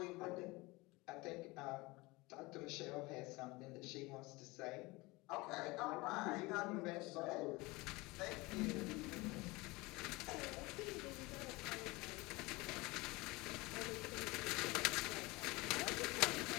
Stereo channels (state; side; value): quieter; right; 22.9 dB